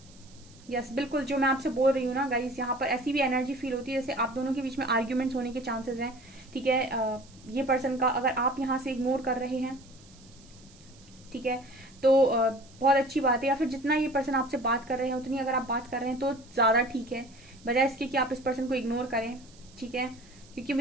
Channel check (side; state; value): right; noise; hiss, 25 dB below the sound